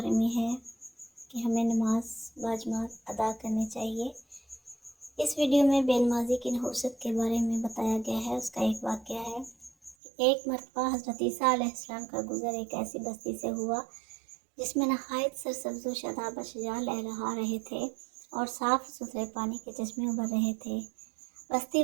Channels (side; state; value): left; drops out; at 10.0 s